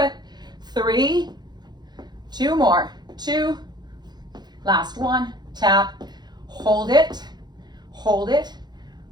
3, 2 more. 2, last one. Tap, hold it,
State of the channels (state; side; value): late; left; 0.21 ms